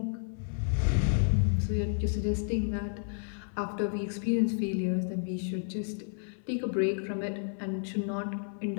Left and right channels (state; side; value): silent; right; 56 dB below the other